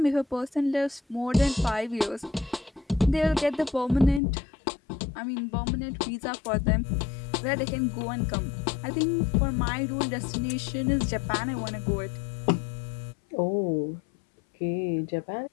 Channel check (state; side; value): drops out; right; at 4.2 s